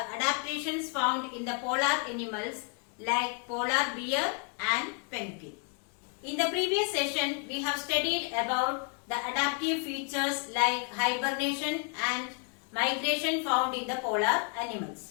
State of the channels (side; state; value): right; quieter; 38.8 dB